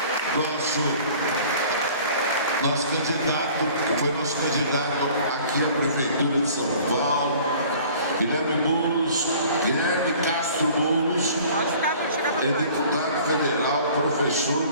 Nosso candidato, que foi nosso candidato aqui à Prefeitura de São Paulo, Guilherme Boulos, Guilherme Castro Boulos, é deputado federal,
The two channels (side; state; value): both; inverted; correlation -0.49